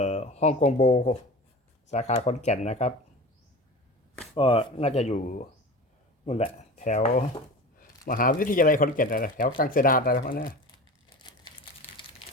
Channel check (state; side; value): normal; both; correlation 0.34